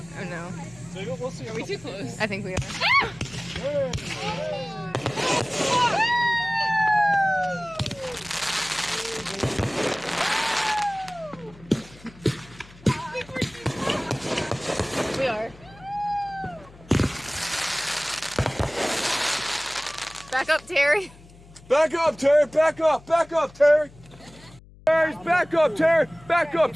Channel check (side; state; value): left; noise; hum, 22 dB below the sound